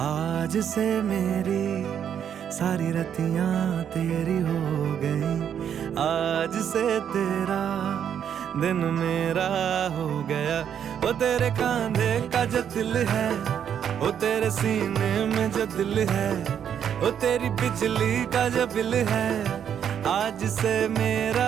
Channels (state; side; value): quieter; left; 8.7 dB